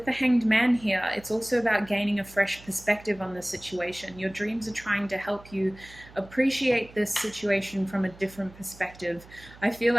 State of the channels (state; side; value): noise; right; hum, 21 dB below the sound